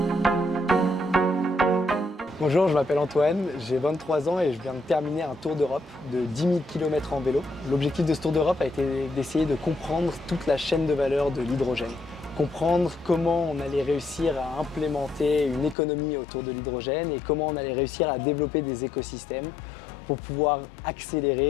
Bonjour, je m'appelle Antoine, j'ai 23 ans et je viens de terminer un tour d'Europe de 10 000 km en vélo. L'objectif de ce tour d'Europe a été d'essayer de comprendre toute la chaîne de valeur de l'hydrogène. Comprendre comment on allait réussir à implémenter une économie autour de l'hydrogène et comment on allait réussir à développer des écosystèmes pour pouvoir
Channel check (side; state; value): right; drops out; at 15.8 s